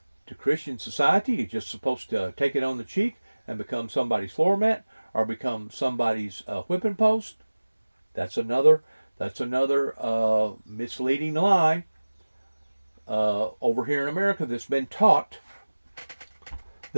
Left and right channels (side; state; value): both; inverted; correlation -1.00